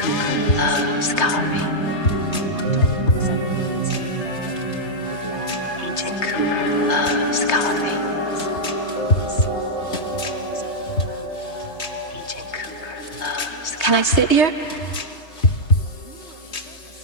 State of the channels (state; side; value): late; right; 3.2 ms